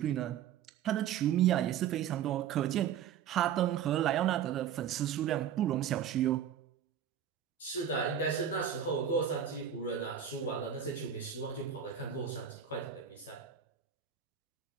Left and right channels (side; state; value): left; quieter; 8.9 dB